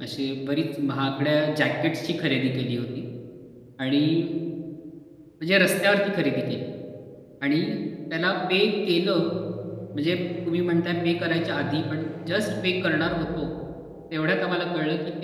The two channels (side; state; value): both; identical; correlation 1.00